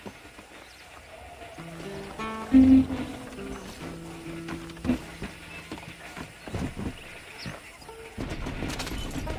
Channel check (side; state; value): both; identical; correlation 1.00